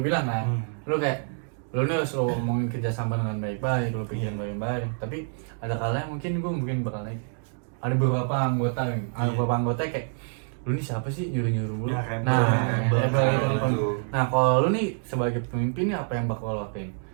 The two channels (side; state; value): left; silent; 60 dB below the other